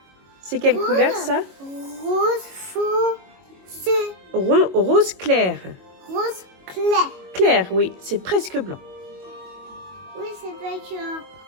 C'est quelle couleur, ça? Rose foncé. Rose clair. Rose clair. Clair, oui. C'est presque blanc. Oui, c'est pas que...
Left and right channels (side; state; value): left; late; 22 ms